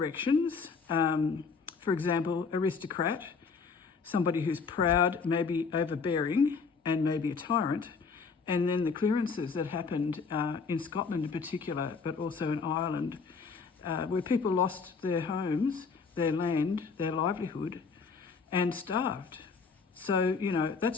For example, aristocrat, somebody who's proud, maybe overbearing, and maybe a tyrant. And then the clearances that happened in Scotland in particular, but also in Ireland, where people lost their homes, their land, their livelihood, and starved. So,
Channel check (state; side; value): quieter; right; 5.1 dB